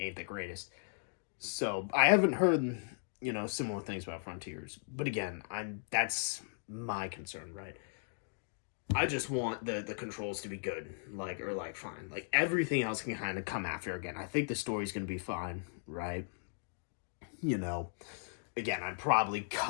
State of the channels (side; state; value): right; silent; digital silence